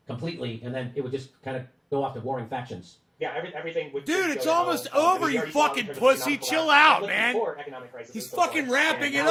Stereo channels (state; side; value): identical; both; correlation 1.00